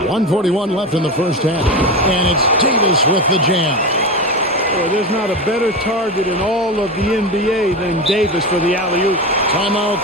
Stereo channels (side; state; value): both; normal; correlation 0.21